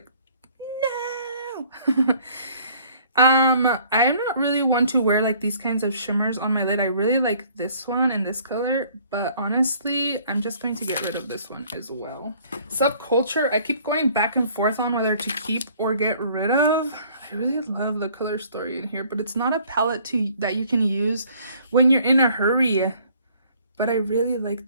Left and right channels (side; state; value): both; inverted; correlation -0.57